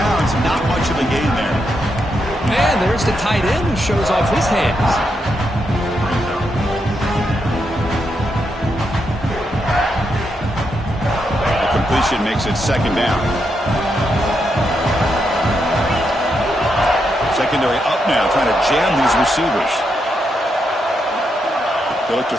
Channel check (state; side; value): normal; both; correlation 0.82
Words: Not much of a gain there. And there's the tight end who shows off his hands. incompletion makes it second down. Secondary up now, trying to jam these receivers. They look to